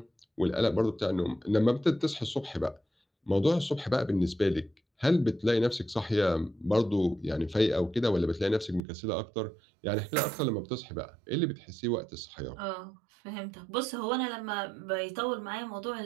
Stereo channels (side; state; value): left; drops out; at 8.8 s